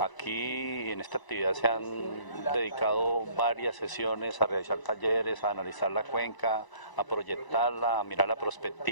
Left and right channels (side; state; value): right; late; 1.0 ms